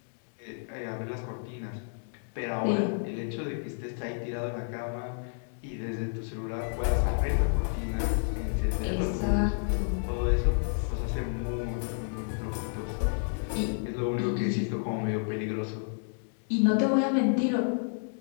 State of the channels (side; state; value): right; silent; digital silence